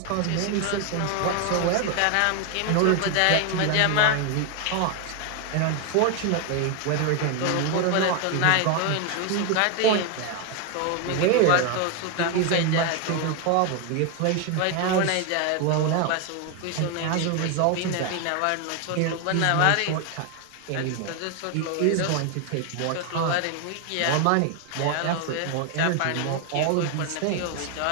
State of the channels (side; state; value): both; different; correlation 0.01